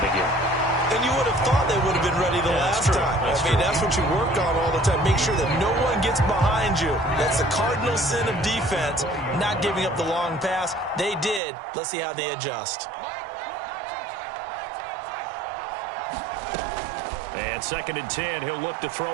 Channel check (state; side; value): drops out; left; at 11.4 s